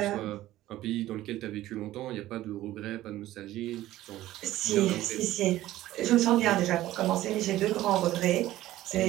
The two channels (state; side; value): quieter; left; 15.1 dB